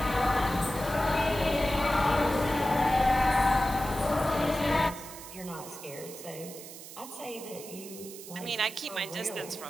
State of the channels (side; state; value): right; noise; hiss, 14 dB below the sound